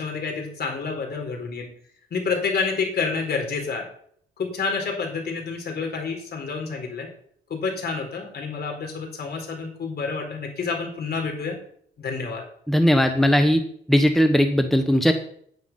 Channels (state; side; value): normal; both; correlation 0.76